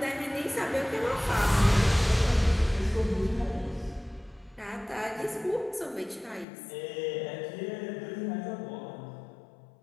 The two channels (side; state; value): right; drops out; at 6.5 s